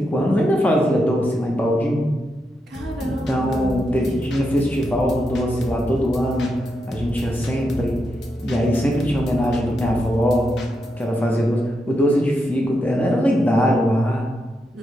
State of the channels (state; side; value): normal; both; correlation 0.84